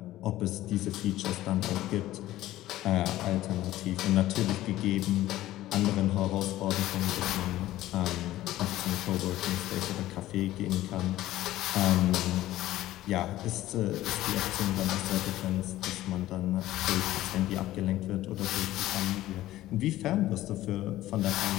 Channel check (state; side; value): quieter; right; 15.2 dB